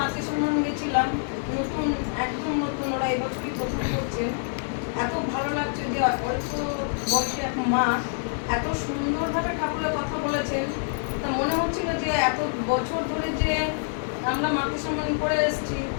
সম্মান গেছিলাম, নতুন একদম নতুন, ওরা এবছরই প্রথম করছেন। এত ভালো লাগছে যে অল্প বয়সে এক মা এত সুন্দরভাবে ঠাকুরের কথা বলেছেন। তা মনে হচ্ছিল যে এত বছর ধরে যে আমরা মাতৃ সম্মান করে এসেছি,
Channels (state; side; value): silent; right; 61 dB below the other